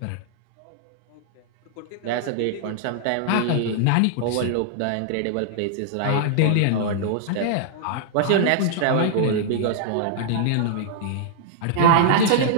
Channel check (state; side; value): different; both; correlation -0.01